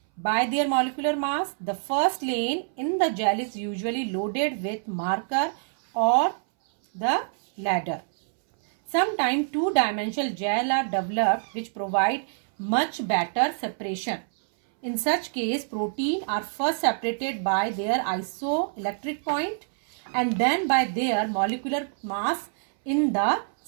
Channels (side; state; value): left; silent; 61 dB below the other